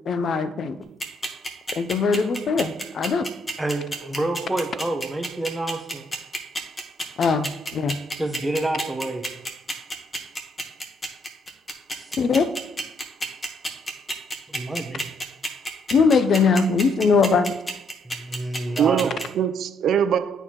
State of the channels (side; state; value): both; normal; correlation 0.71